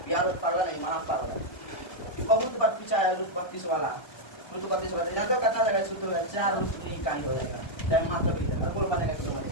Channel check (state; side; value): late; right; 1.3 ms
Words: यार पागल नहीं, महा पागल है, बहुत बार पूछा है। रूट 32 वाला, रूट 32 वाला यहाँ तो कितना जाएगा? सूत्र है 4 रूट नहीं का ही हो जाएगा, चाहे मात्र भी देगा। बोल बनेगा कि नहीं